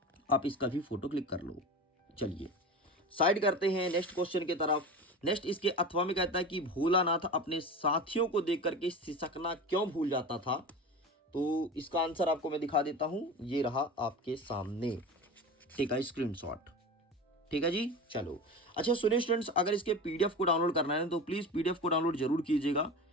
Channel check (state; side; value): normal; both; correlation 0.30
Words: आप इसका भी फोटो क्लिक कर लो। चलिए साइड करते हैं नेक्स्ट क्वेश्चन की तरफ। नेक्स्ट इसके अथवा में कहता है कि भोलानाथ अपने साथियों को देख करके सिसकना क्यों भूल जाता था, तो इसका आंसर आपको मैं दिखा देता हूं, ये रहा आपके सामने, ठीक है, स्क्रीनशॉट, ठीक है जी। चलो अच्छा सुनिए स्टूडेंट्स, अगर इसके पीडीएफ को डाउनलोड करना है तो प्लीज पीडीएफ को डाउनलोड जरूर कीजिएगा।